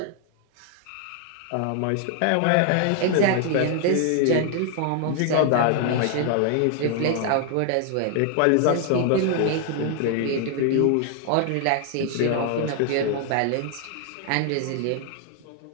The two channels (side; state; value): both; different; correlation 0.00